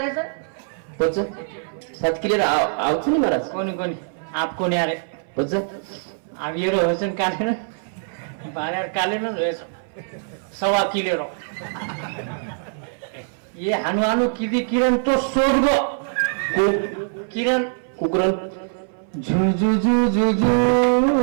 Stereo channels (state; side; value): silent; left; 60 dB below the other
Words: रे सर पच 7 किलेर आवच नाही महाराज कोणी आप कोणी अरे पच आप ये रोशन काले ना बाजार काले ना 1.25 किलेरो ये हनुमानु किती किरण तो सोड गो किरण कुकरण झू झू झू झू झू